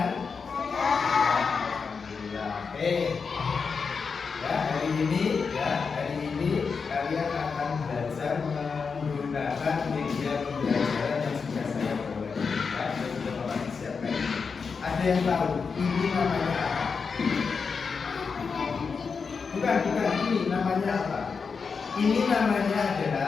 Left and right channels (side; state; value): right; quieter; 5.3 dB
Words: Alhamdulillah. Oke. Ya, hari ini kalian akan belajar menggunakan media pembelajaran yang sudah saya bawa. Saya sudah bawa siapkan. Ada yang tahu ini namanya apa? Bukan, ini namanya apa? Ini namanya